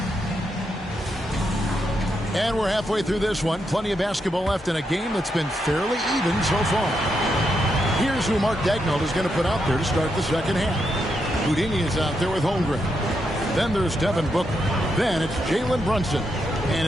And we're halfway through this one. Plenty of basketball left in a game that's been fairly even so far. Here's who Mark Daigneault is going to put out there to start the second half. Houdini is out there with Holmgren. Then there's Devin Booker. Then it's Jalen Brunson. And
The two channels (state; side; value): normal; both; correlation 0.82